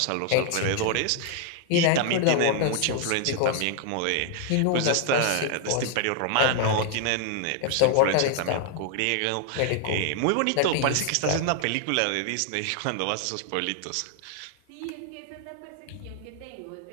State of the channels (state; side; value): different; both; correlation 0.00